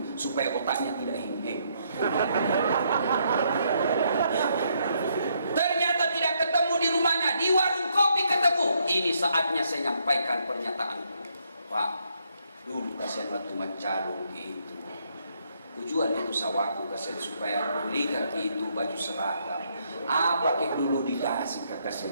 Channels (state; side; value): inverted; both; correlation -0.73